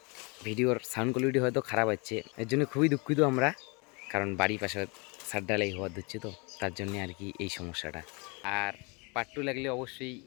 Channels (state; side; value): quieter; right; 30.5 dB